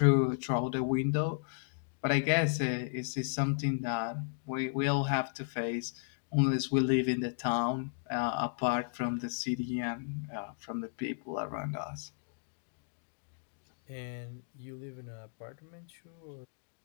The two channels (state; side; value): silent; right; digital silence